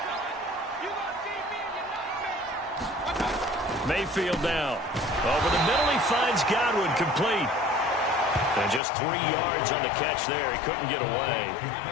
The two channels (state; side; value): drops out; right; at 8.8 s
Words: Mayfield now. Over the middle, he finds Godwin, complete. And just 3 yards on the catch there. He couldn't get away.